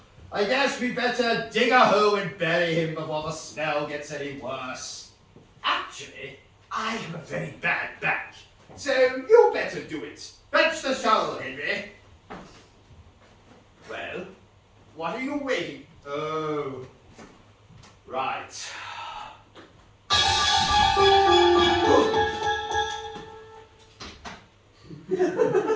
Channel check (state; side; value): identical; both; correlation 1.00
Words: I guess we better dig a hole and bury him before the smell gets any worse. Actually, I have a very bad back, so you better do it. Fetch the shovel, Henry. Well, what are you waiting? Oh, right. He's going